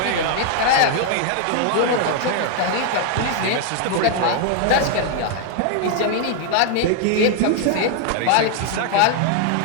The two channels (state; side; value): different; both; correlation 0.00